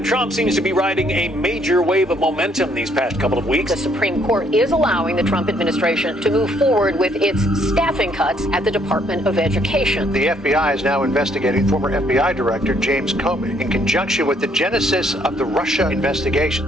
Trump seems to be riding a major wave of momentum these past couple of weeks. The Supreme Court is allowing the Trump administration to move forward with its staffing cuts at the Department of Education. The FBI is now investigating former FBI Director James Comey in conjunction with the genesis of the Russia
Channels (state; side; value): normal; both; correlation 0.67